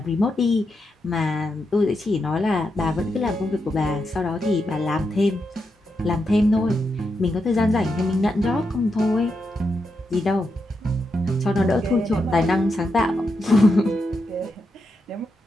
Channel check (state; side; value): normal; both; correlation 0.85